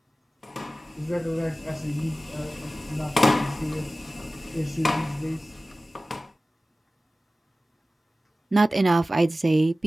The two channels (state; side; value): normal; both; correlation 0.96